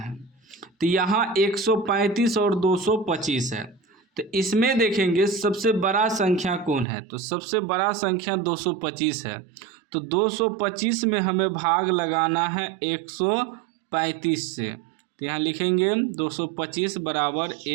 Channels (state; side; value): drops out; left; at 6.9 s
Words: तो यहाँ 135 और 225 है, तो इसमें देखेंगे सबसे बड़ा संख्या कौन है। तो सबसे बड़ा संख्या 225 है। तो 225 में हमें भाग लगाना है 135 से। तो यहाँ लिखेंगे 225 बराबर